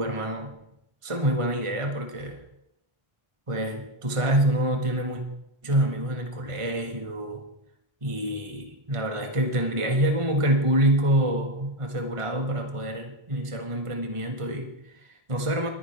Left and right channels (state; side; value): late; left; 1.5 ms